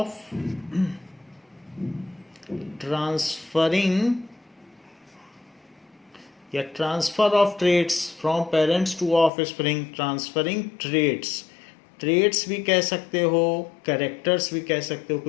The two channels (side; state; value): right; drops out; at 9.3 s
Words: transferring या transfer of traits from parents to offspring, transferring traits, traits भी कह सकते हो, characters भी कह सकते हो,